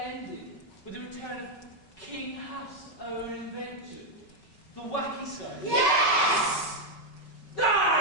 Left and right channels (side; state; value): right; late; 5.3 ms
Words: ending with the return of King Huff's own invention, the Wacky Soap? Yes!